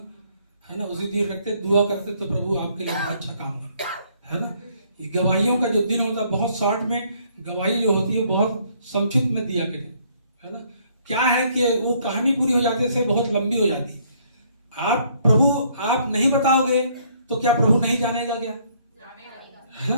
है ना, उसी दिन रखते दुआ करते तो प्रभु आपके लिए अच्छा काम करता है ना। ये गवाहियों का जो दिन होता है, बहुत शॉर्ट में गवाही जो होती है बहुत संक्षिप्त में दिया करें, है ना। क्या है कि वो कहानी पूरी हो जाते से बहुत लंबी हो जाती। आप नहीं बताओगे तो क्या प्रभु नहीं जानेगा क्या, है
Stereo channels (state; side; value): inverted; both; correlation -0.65